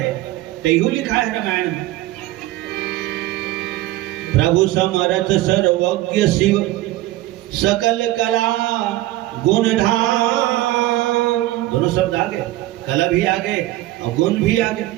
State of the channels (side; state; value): left; quieter; 16.4 dB